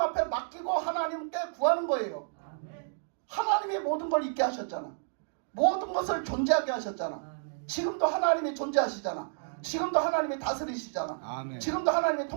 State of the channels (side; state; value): left; silent; digital silence